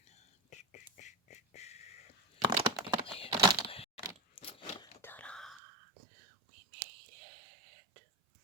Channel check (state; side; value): drops out; left; at 5.6 s